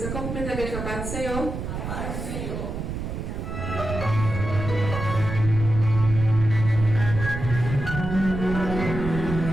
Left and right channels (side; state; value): right; noise; rumble, 5 dB below the sound